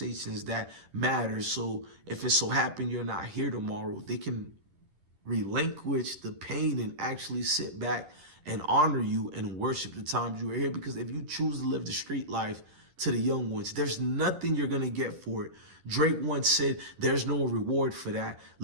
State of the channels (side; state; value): left; late; 11 ms